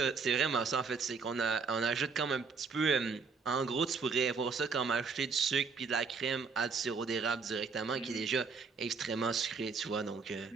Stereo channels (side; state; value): left; quieter; 4.9 dB